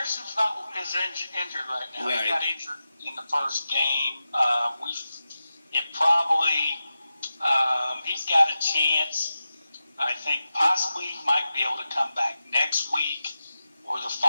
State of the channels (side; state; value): both; inverted; correlation -0.92